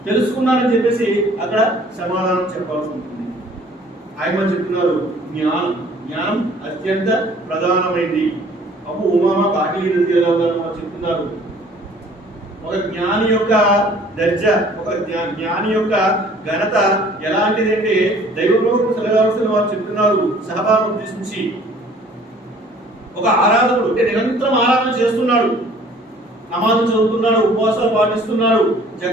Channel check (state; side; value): normal; both; correlation 0.54